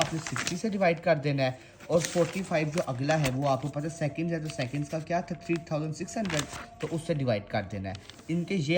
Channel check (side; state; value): both; identical; correlation 1.00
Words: 60 से डिवाइड कर देना है। और 45 जो अगला है वो आपको पता है सेकंड्स है, तो सेकंड्स का क्या था 3600, तो उससे डिवाइड कर देना है। इनके ये